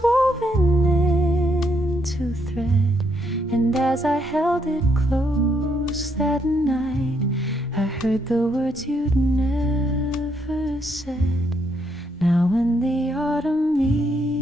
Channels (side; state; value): both; normal; correlation 0.74